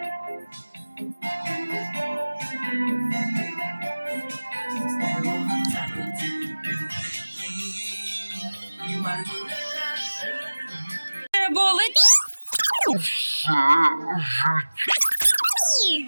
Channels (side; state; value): both; inverted; correlation -1.00